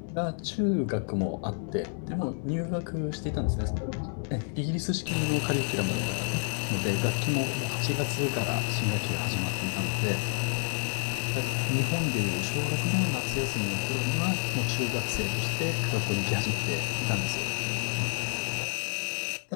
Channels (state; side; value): silent; right; 58 dB below the other